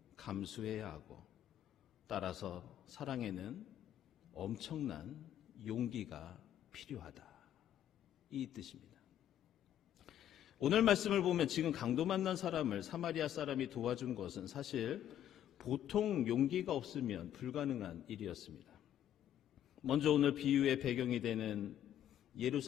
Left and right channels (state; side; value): quieter; right; 10.9 dB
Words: 감수해야 하고 따라서 사랑에는 엄청난 용기가 필요하다. 이 뜻입니다. 오늘 말씀을 보면 지금 강도 만난 사람을 사마리아 사람이 도와준 것은 사실 보통 용기가 없으면 불가능한 일이었습니다. 먼저 오늘 비유의 배경이 되는